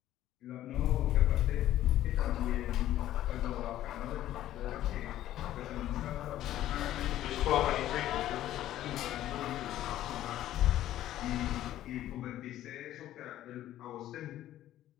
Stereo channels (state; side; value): quieter; right; 13.2 dB